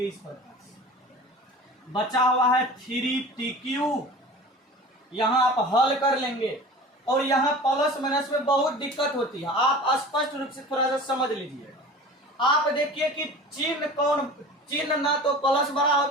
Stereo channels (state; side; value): normal; both; correlation 0.39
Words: इस प्रकार से। बचा हुआ है 3t³, यहाँ आप हल कर लेंगे। और यहाँ प्लस माइनस में बहुत दिक्कत होती है, आप स्पष्ट रूप से थोड़ा सा समझ लीजिएगा। आप देखिए कि चिन्ह ना तो प्लस बड़ा